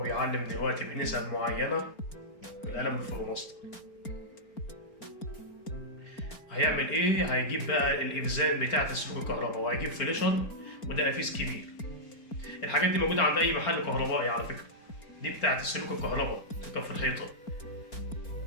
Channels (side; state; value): right; late; 4.5 ms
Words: بيعلم دلوقتي بنسب معينة بالقلم الفلوماستر. هيعمل ايه؟ هيجيب بقى الإفزان بتاعة سلوك الكهرباء، وهيجيب فليشر وده قفيز كبير. الحاجات دي موجودة عند أي محل كهربائي على فكرة، دي بتاعة سلوك الكهرباء تركب في الحيطة.